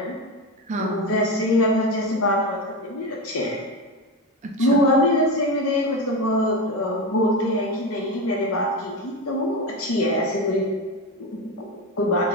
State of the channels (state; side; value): normal; both; correlation 0.18